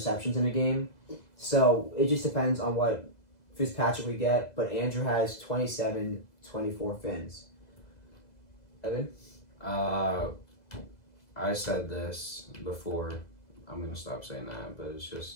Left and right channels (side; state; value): right; late; 2.0 ms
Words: in a game. So it just depends on what Fitzpatrick we get, but Andrew has 27-24 Fins. Evan? I said this before. I'm going to stop saying that, but it's just...